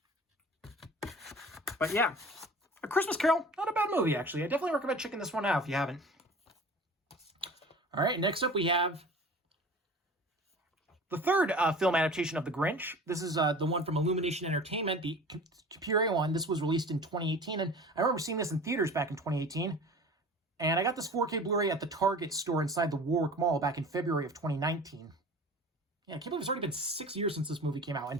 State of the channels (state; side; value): normal; both; correlation 0.40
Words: But yeah, A Christmas Carol, not a bad movie, actually. I definitely recommend checking this one out if you haven't. All right, next up we have the third film adaptation of The Grinch. This is the one from Illumination Entertainment, the computer one. This was released in 2018, and I remember seeing this in theaters back in 2018. And I got this 4K Blu-ray at the Target store inside the Warwick Mall back in February of 2019. Yeah, I can't believe it's already been 6 years since this movie came out. And